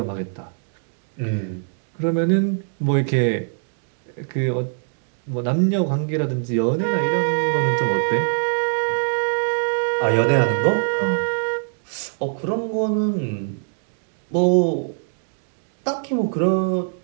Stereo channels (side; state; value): left; silent; digital silence